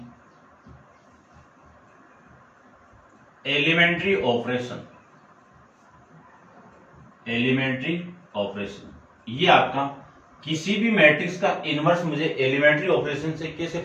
elementary operation. ये आपका किसी भी मैट्रिक्स का इनवर्स मुझे एलिमेंट्री ऑपरेशन से कैसे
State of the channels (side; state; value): both; identical; correlation 1.00